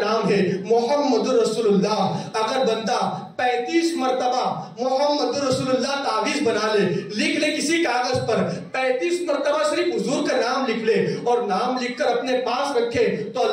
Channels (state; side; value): identical; both; correlation 1.00